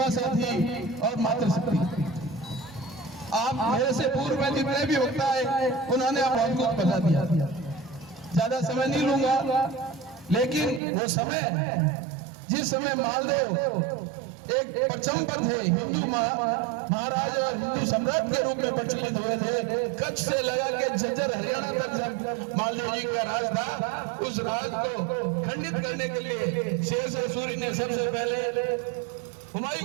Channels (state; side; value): drops out; left; at 10.8 s